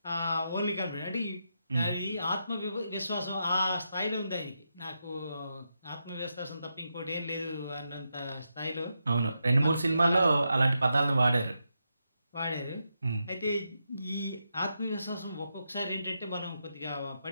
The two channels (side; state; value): both; inverted; correlation -0.85